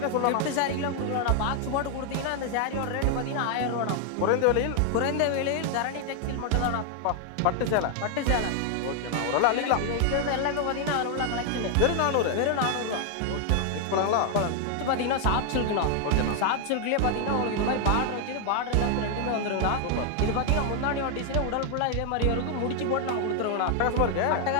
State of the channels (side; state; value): both; different; correlation 0.00